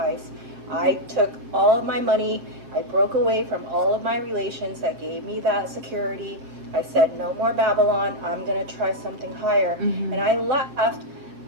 I took all of my money. I broke away from all of my relations that gave me that security. I said, no more Babylon. I'm going to try something higher. And I left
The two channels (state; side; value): late; left; 7.6 ms